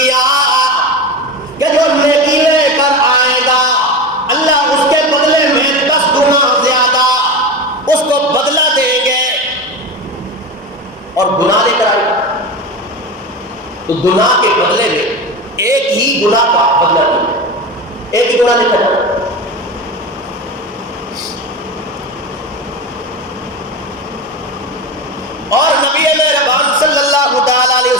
کہ جو نیکی لے کر آئے گا اللہ اس کے بدلے میں 10 گنا زیادہ اس کو بدلہ دیں گے، اور گناہ لے کر آئے گا تو گناہ کے بدلے میں ایک ہی گناہ کا بدلہ دیں گے، ایک ہی گناہ لے کر آئے گا۔ اور نبی مہربان صلی اللہ تعالی علیہ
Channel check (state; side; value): normal; both; correlation 0.24